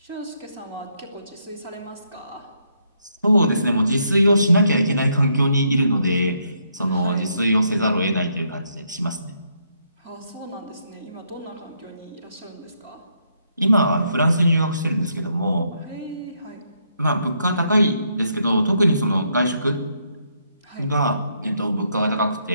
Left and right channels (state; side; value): inverted; both; correlation -0.75